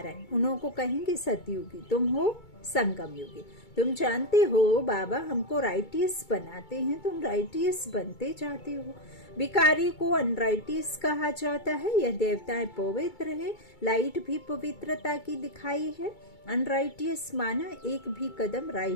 उन्हों को कहेंगे सतयुगी, तुम हो संगम युगी। तुम जानते हो बाबा हमको राइटियस बनाते हैं, तुम राइटियस बनते जाते हो। भिखारी को अनराइटियस कहा जाता है, यह देवताएं पवित्र है, लाइट भी पवित्रता की दिखाई है। अनराइटियस माना एक भी कदम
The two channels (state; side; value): late; right; 2.3 ms